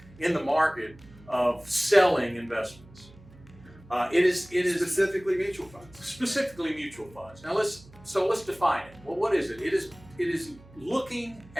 in the market of selling investments. It is Specifically mutual funds. specifically mutual funds. Now let's define it. Well, what is it? It is looking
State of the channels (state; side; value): noise; right; hum, 23 dB below the sound